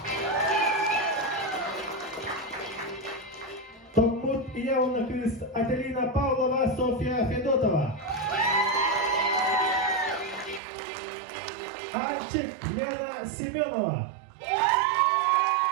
Томмут Явна Квист Ателина Павлова, Софья Федотова. Анчик Лена Семенова.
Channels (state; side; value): drops out; left; at 10.6 s